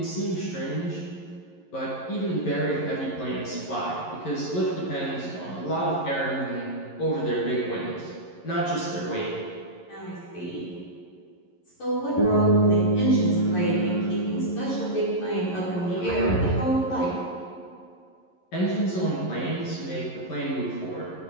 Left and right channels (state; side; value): late; right; 11 ms